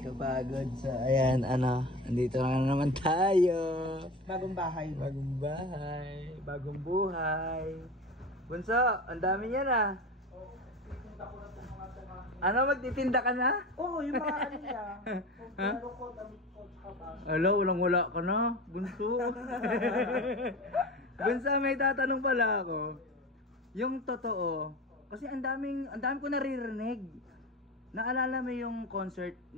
kapagod. So, ayan, andito na naman tayo. Bagong bahay. Bagong bahay, bagong buhay. Bunso, ang dami niya na. Ano, magtitinda ka na? Oo, yung mga ano niya. Ha? Hello, wala ka na, Bunso. Bunso, may tatanong pala ako. Yung totoo, kasi ang dami ko naririnig. Naalala mo yung concert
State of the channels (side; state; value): both; normal; correlation 0.31